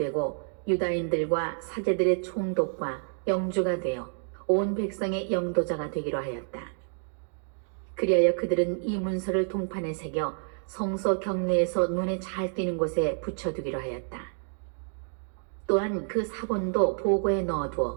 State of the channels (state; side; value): silent; left; digital silence